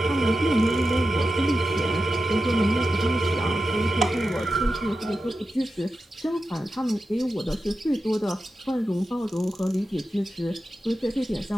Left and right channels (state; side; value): normal; both; correlation 0.91